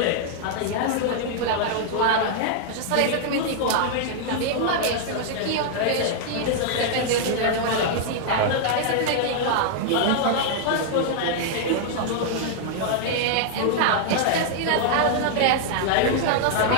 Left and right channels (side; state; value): both; different; correlation -0.01